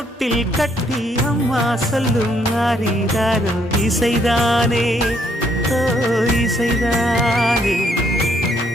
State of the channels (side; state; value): both; normal; correlation 0.70